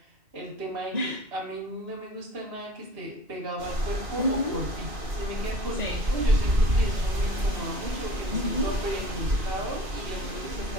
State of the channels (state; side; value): late; left; 2.5 ms